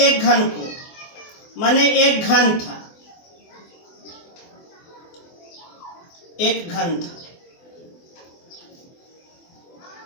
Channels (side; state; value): right; late; 24 ms